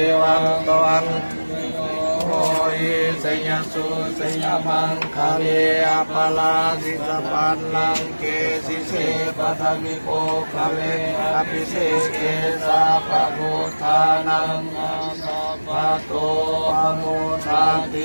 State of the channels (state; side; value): inverted; both; correlation -1.00